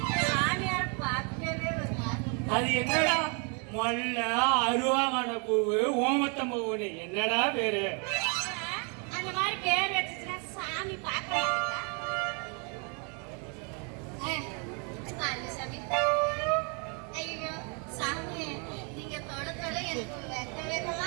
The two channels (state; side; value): quieter; left; 35.7 dB